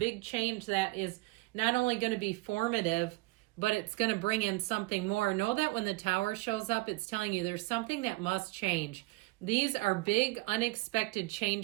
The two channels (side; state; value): left; quieter; 22.7 dB